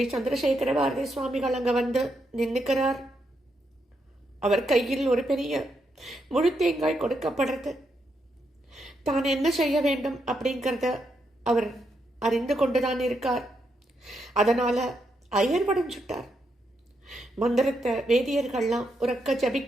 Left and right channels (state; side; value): normal; both; correlation 0.81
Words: சந்திரசேகர பாரதி சுவாமிகள் அங்க வந்து நின்னுக்கிறார். அவர் கையில் ஒரு பெரிய முழு தேங்காய் கொடுக்கப்படுறது. தான் என்ன செய்ய வேண்டும் அப்படிங்கிறத அவர் அறிந்து கொண்டுதான் இருக்கார். அதனால அயர்வடைஞ்சுட்டார். மந்திரத்தை வேதியர்கள்லாம் உறக்க